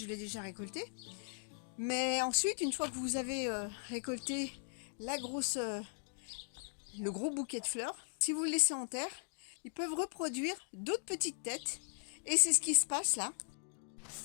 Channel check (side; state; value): right; silent; digital silence